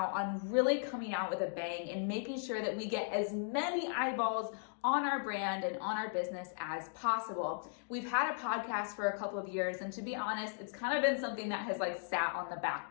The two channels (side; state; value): right; silent; digital silence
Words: on really coming out with a bang and making sure that we get as many eyeballs on our brand and on our business as possible. We've had a podcast for a couple of years, and to be honest, it's kind of been something that has sat on the